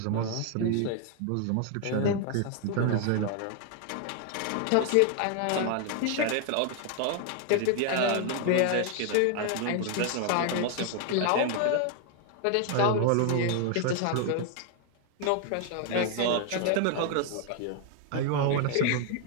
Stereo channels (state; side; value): different; both; correlation 0.00